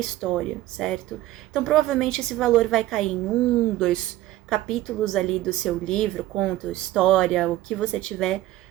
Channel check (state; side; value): quieter; left; 15.2 dB